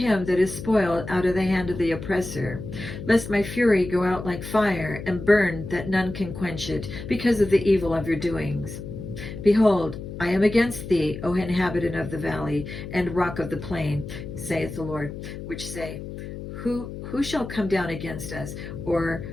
that is spoiled out of the hand of the oppressor, lest my fury go out like fire, and burn that none can quench it, because of the evil of your doings. Behold, I am against thee, O inhabitant of the valley, and rock of the plain, saith the Lord, which say, Who shall come down against us, or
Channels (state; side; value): noise; left; hum, 10 dB below the sound